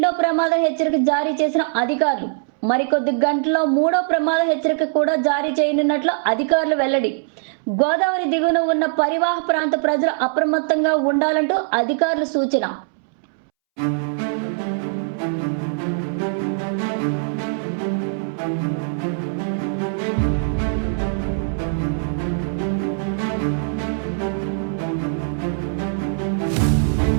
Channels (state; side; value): silent; left; 65 dB below the other